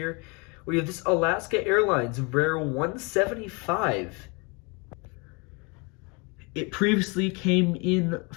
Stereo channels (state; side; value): quieter; right; 30.3 dB